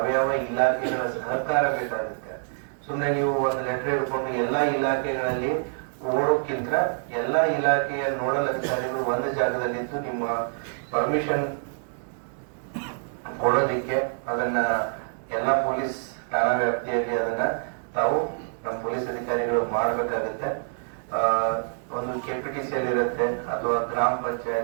ಇಲಾಖೆಗಳ ಸಹಕಾರ ಬೇಕಾಗುತ್ತೆ. ಸುಮ್ನೆ ನೀವು ಒಂದು ಲೆಟರ್ ಹಿಡ್ಕೊಂಡು ಎಲ್ಲಾ ಇಲಾಖೆಗಳಲ್ಲಿ ಓಡೋಕ್ಕಿಂತ ಎಲ್ಲಾ ಇಲಾಖೆಯ ನೋಡಲ್ ಅಧಿಕಾರಿಗಳು ಒಂದು ಜಾಗದಲ್ಲಿದ್ದು ನಿಮ್ಮ ಪರ್ಮಿಷನ್ ಕೊಡೋದಿಕ್ಕೆ ಅದನ್ನ ಎಲ್ಲಾ ಪೊಲೀಸ್ ಠಾಣಾ ವ್ಯಾಪ್ತಿಯಲ್ಲಿ ಅದನ್ನ ತಾವು ನಮ್ಮ ಪೊಲೀಸ್ ಅಧಿಕಾರಿಗಳು ಮಾಡಬೇಕಾಗುತ್ತೆ. ಒಂದು ಕೆಪಿಟಿಸಿಯಲ್ಲಿ ಇರುತ್ತೆ, ಅಥವಾ ಗ್ರಾಮ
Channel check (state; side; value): silent; left; digital silence